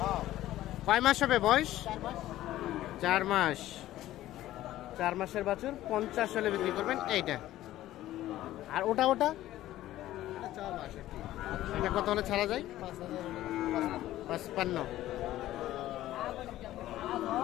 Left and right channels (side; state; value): right; quieter; 14.5 dB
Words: কয় মাস হবে বয়স? 4 মাস। 4 মাসের বাছুর 50 হলে বিক্রি করবেন এইটা। আর ওটা এটা কত হলে ছাড়া যায়? 55।